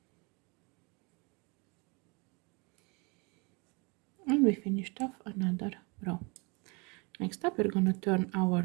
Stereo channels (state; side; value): quieter; left; 30.0 dB